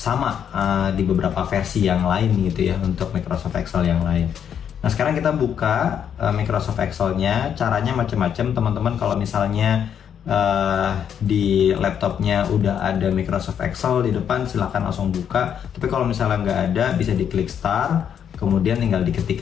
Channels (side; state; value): right; quieter; 8.5 dB